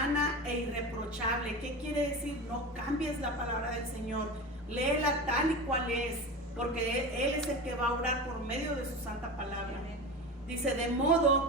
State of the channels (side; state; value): both; normal; correlation 0.27